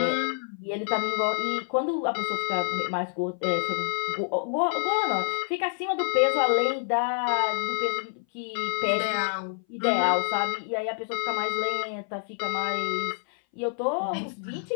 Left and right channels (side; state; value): right; silent; 58 dB below the other